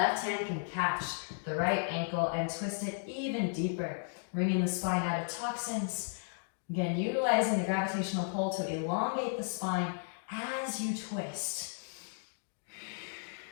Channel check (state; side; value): silent; right; digital silence